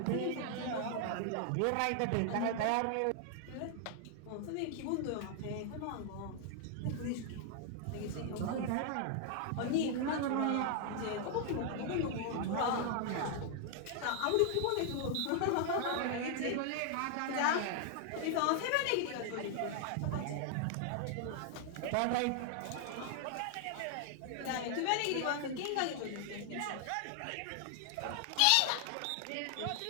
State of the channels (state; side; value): different; both; correlation 0.00